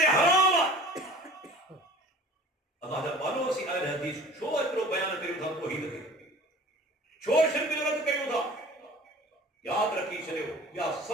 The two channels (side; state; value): both; normal; correlation 0.44